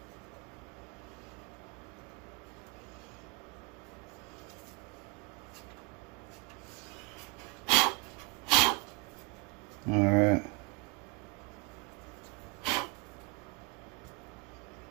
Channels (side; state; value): left; quieter; 30.1 dB